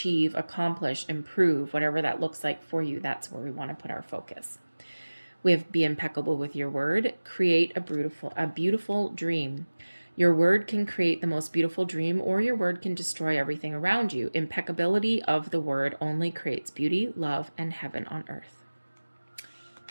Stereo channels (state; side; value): inverted; both; correlation -1.00